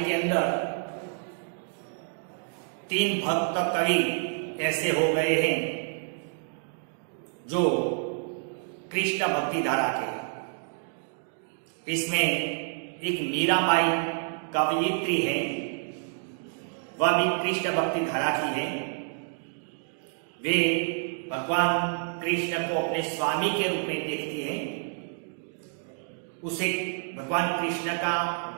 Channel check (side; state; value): left; silent; 59 dB below the other